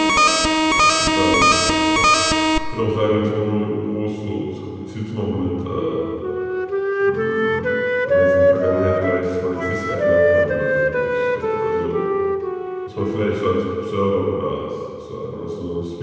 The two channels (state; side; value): identical; both; correlation 1.00